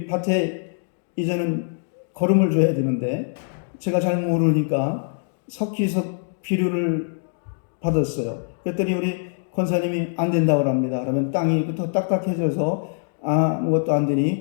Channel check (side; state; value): right; silent; digital silence